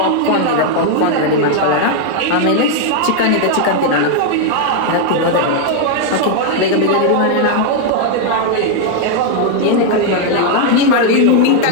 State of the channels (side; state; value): both; different; correlation 0.00